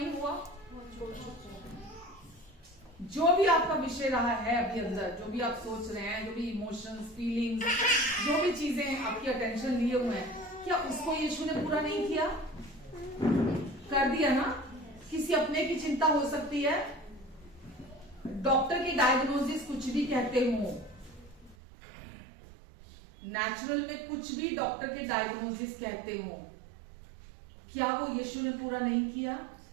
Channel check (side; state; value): left; drops out; at 21.6 s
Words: हुआ? जो भी आपका विषय रहा है अभी अंदर, जो भी आप सोच रहे हैं, जो भी इमोशंस, फीलिंग्स, जो भी चीजें आपकी अटेंशन लिए हुए हैं, क्या उसको यीशु ने पूरा नहीं किया? कर दिया ना। किसी अपने की चिंता हो सकती है, डॉक्टर की डायग्नोसिस कुछ भी कहते हो, नेचुरल में कुछ भी डॉक्टर के डायग्नोसिस कहते हो, क्या वो यीशु ने पूरा नहीं किया?